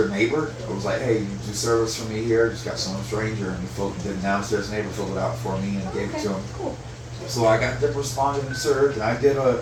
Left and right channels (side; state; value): both; identical; correlation 1.00